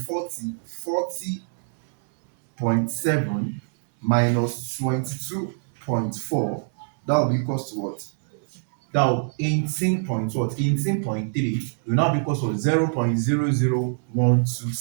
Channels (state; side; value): silent; left; 62 dB below the other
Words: minus 22.4. That will be equals to what? That will 18 point what? 18.3 will now be equals to 0.0012